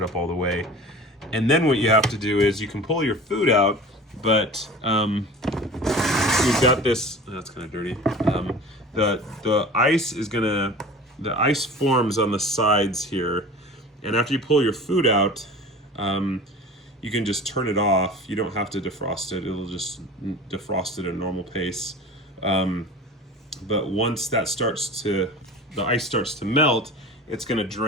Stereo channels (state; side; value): normal; both; correlation 0.38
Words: it up all the way. And then what you have to do is you can pull your food out, but we've got this, that's kind of dirty. The ice forms on the sides here, and after you pull your food out, you can just turn it off. You don't have to defrost it. It'll just defrost it at a normal pace. But once that the ice starts to melt, it's going to